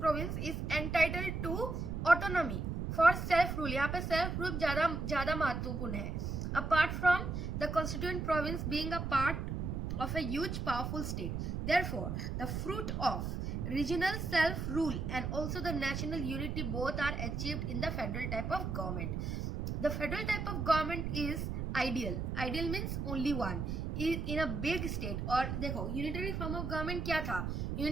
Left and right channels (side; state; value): right; noise; rumble, 3 dB below the sound